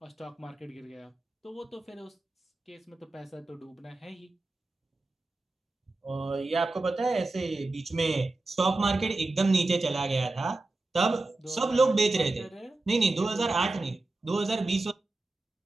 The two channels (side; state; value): left; quieter; 3.0 dB